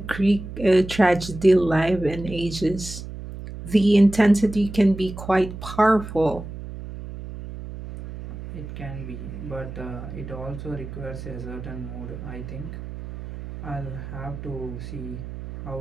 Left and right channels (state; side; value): noise; right; hum, 10 dB below the sound